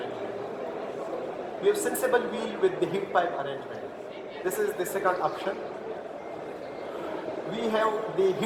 We have sensible wheel with the heat pipe arrangement. This is the second option. We have the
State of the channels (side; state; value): both; identical; correlation 1.00